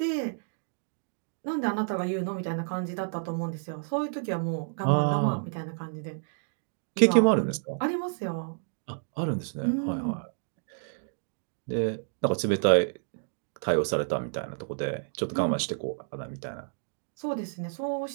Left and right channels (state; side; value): silent; left; digital silence